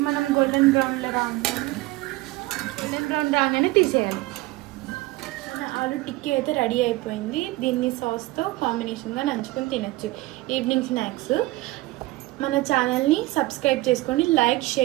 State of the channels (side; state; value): left; quieter; 19.6 dB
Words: మనం గోల్డెన్ బ్రౌన్ రాగానే తీసేయాలి. ఆలు టిక్కీ అయితే రెడీ అయిపోయింది. దీన్ని సాస్తో కాంబినేషన్గా నంచుకొని తినచ్చు ఈవినింగ్ స్నాక్స్. మన ఛానల్ని సబ్స్క్రైబ్ చేసుకోండి, లైక్,